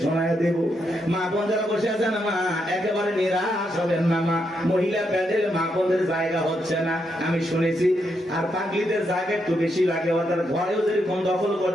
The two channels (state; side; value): normal; both; correlation 0.80